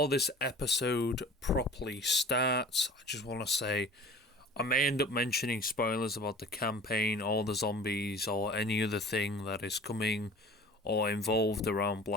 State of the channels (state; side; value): normal; both; correlation 0.42